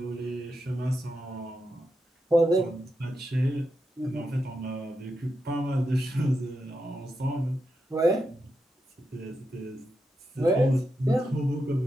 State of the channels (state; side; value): normal; both; correlation 0.86